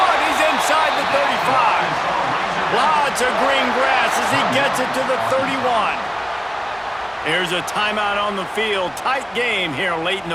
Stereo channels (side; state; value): both; identical; correlation 1.00